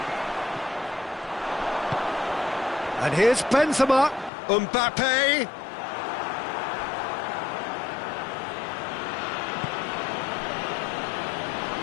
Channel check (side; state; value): right; drops out; at 4.3 s